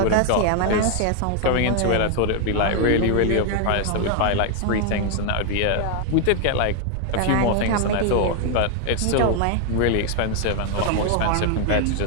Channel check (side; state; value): both; different; correlation 0.00